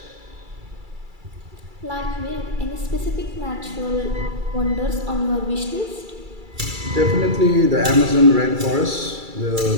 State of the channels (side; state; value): left; late; 2.3 ms